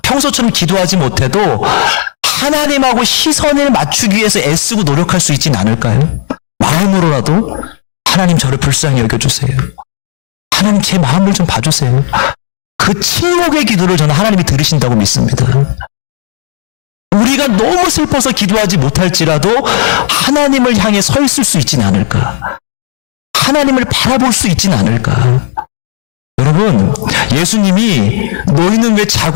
평소처럼 기도하지 못해도 하나님하고 시선을 맞추기 위해서 애쓰고 노력할 수 있진 않을까요? 마음으로라도 하나님 저를 불쌍히 여겨주세요. 하나님 제 마음을 좀 봐주세요. 그 침묵의 기도를 저는 하나님이 들으신다고 믿습니다. 우리가 너무 슬퍼서 기도하지 못할지라도 하나님을 향해 서 있을 수 있진 않을까? 하나님을 바라볼 수 있진 않을까? 여러분, 예수님이 너희는 왜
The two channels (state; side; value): silent; right; 65 dB below the other